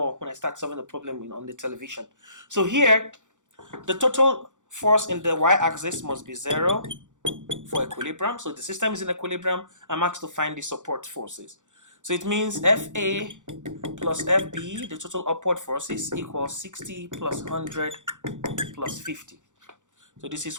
when I start solving the problem on the television. So here, the total force in the y-axis must be 0 for equilibrium. So the system is in equilibrium. I'm asked to find the support forces. So it means FA plus FB, the total upward forces, equals 60 plus 100 plus 50. So this is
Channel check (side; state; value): left; late; 0.86 ms